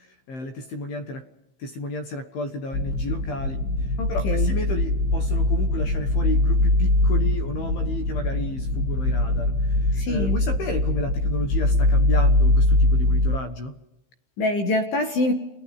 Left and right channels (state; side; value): late; right; 15 ms